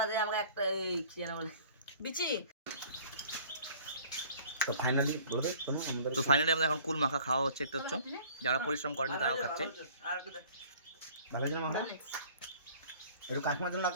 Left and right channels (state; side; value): inverted; both; correlation -0.50